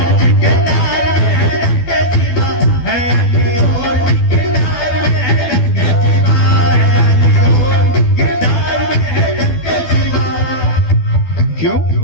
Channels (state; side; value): late; right; 12 ms